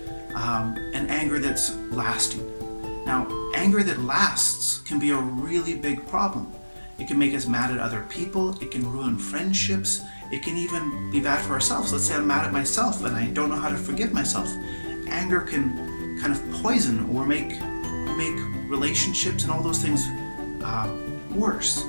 and anger that's lasting. Now, anger that lasts can be a really big problem. It can make us mad at other people, it can ruin friendships, it can even be bad for ourselves. Let's say I'm mad at myself and I don't know how to forgive myself. Anger can kind of poison or make relationships and all those things worse.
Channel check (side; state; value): both; inverted; correlation -1.00